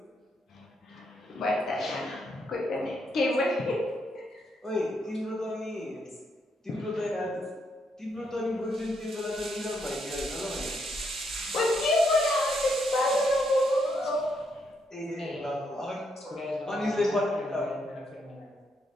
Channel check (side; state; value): both; normal; correlation 0.77